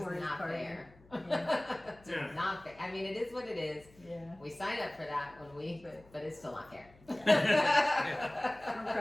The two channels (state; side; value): noise; left; hum, 26 dB below the sound